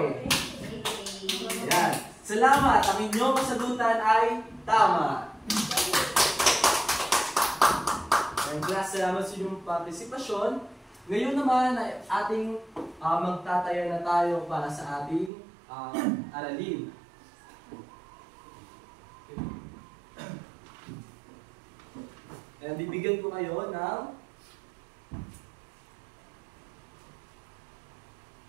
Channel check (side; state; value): left; drops out; at 15.3 s